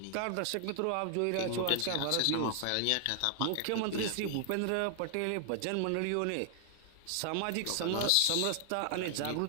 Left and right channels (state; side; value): different; both; correlation 0.00